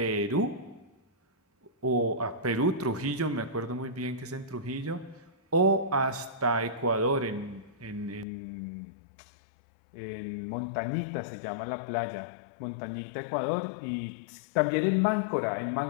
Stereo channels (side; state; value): right; drops out; at 8.2 s